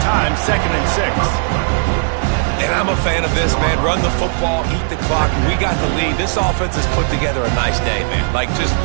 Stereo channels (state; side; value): silent; left; 69 dB below the other